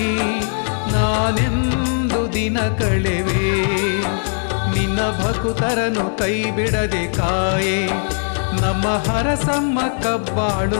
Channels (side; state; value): right; silent; 60 dB below the other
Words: ನಾನೆಂದು ದಿನ ಕಳೆವೆ. ನಿನ್ನ ಭಕ್ತರನ್ನು ಕೈ ಬಿಡದೆ ಕಾಯೆ, ನಮ್ಮ ಹರಸಮ್ಮ